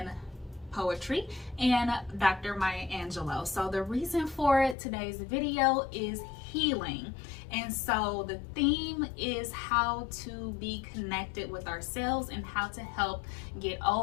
poetry and Dr. Maya Angelou. So the reason for today's video is healing. And so the theme is how to be connected with ourselves and how to help get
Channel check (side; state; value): right; drops out; at 4.8 s